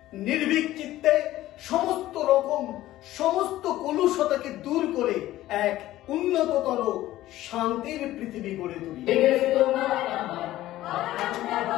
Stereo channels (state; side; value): quieter; right; 15.2 dB